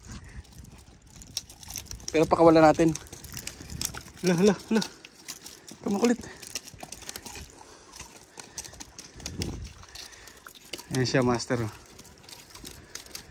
Pero pakawala natin. Hala. Kamakulit. Ayan siya, master.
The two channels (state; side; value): identical; both; correlation 1.00